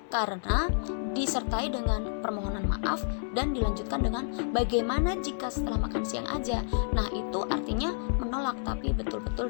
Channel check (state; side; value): silent; right; digital silence